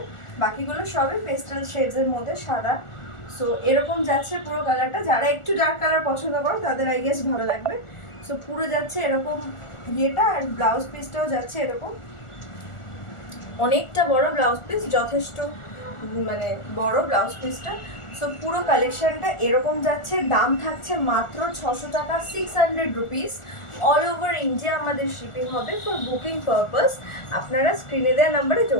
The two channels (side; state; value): right; late; 1.4 ms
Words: বাকিগুলো সবই পেস্টেল শেডসের মধ্যে সাদা। সো এরকম যাচ্ছে পুরো কালারটা। যারা একটু ডার্ক কালার পছন্দ করো তাদের আই গেস ভালো লাগবে। সো পুরো যাচ্ছে এরকম ইয়েটা। আর ব্লাউজ পিসটাও যাচ্ছে এরকম, অনেকটা বড় ব্লাউজ পিস, যথেষ্ট মানে বড় ব্লাউজ পিসটা। সো পুরো কালেকশনটা এরকম যাচ্ছে। দাম থাকছে মাত্র 600 টাকা, 600 রুপিস। অল ওভার ইন্ডিয়া আমাদের শিপিং হবে। ফর বুকিং পারপাস আপনারা স্ক্রিনে দেওয়া নাম্বারে